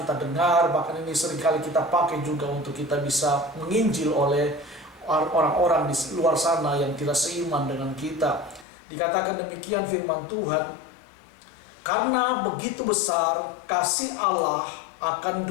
dengar, bahkan ini seringkali kita pakai juga untuk kita bisa menginjil oleh orang-orang di luar sana yang tidak seiman dengan kita. Dikatakan demikian firman Tuhan, karena begitu besar kasih Allah akan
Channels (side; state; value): right; drops out; at 8.7 s